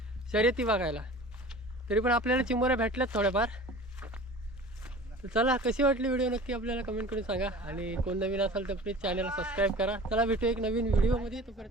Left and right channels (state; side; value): normal; both; correlation 0.40